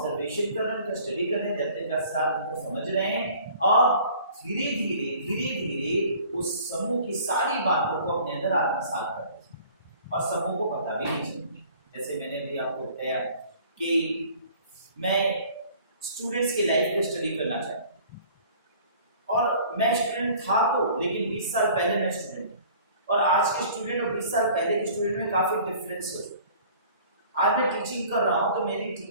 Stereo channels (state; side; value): inverted; both; correlation -0.50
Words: कर रहे हैं, उनका स्टडी कर रहे हैं, जब तक साथ उनको समझ रहे हैं और धीरे धीरे उस समूह की सारी बातों को अपने अंदर आत्मसात कर रहे हैं और समूह को पता भी नहीं चलती। जैसे मैंने भी आपको बताया कि मैं स्टूडेंट्स की लाइफ पे स्टडी करना चाहता हूँ और मैं स्टूडेंट था तो, लेकिन 20 साल पहले मैं स्टूडेंट था और आज के स्टूडेंट और 20 साल पहले के स्टूडेंट में काफ़ी डिफरेंस हो। आज मैं टीचिंग कर रहा हूँ तो मेरी